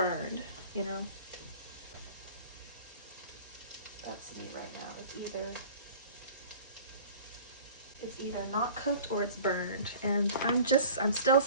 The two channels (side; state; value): both; inverted; correlation -0.44